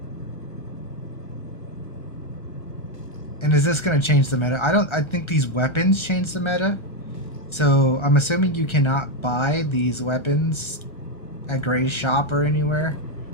And is this going to change the meta? I think these weapons change the meta. So I'm assuming you cannot buy these weapons at Gray's shop or anywhere,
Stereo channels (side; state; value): right; late; 1.3 ms